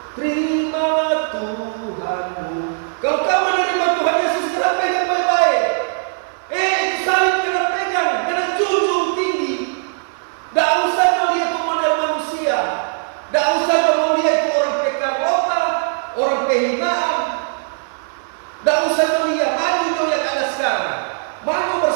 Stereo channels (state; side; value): silent; left; 59 dB below the other